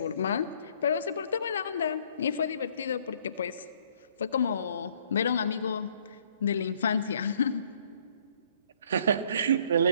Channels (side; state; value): both; inverted; correlation -0.63